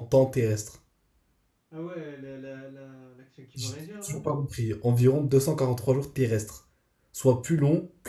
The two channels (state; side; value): identical; both; correlation 1.00